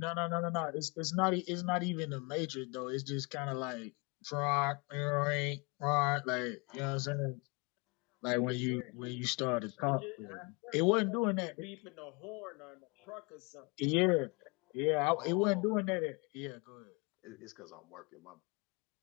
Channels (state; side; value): quieter; right; 30.6 dB